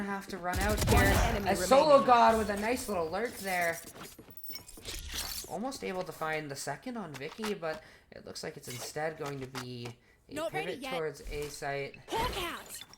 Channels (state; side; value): identical; both; correlation 1.00